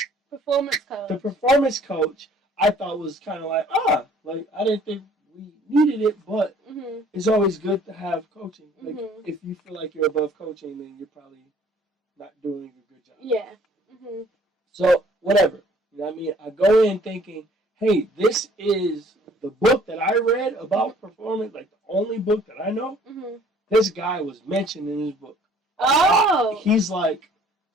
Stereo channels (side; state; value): both; normal; correlation 0.56